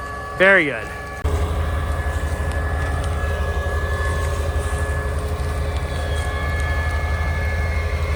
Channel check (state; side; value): identical; both; correlation 1.00